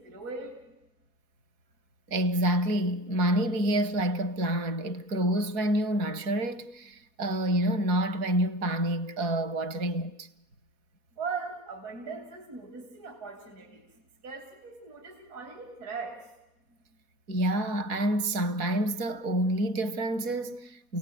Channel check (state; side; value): late; left; 4.2 ms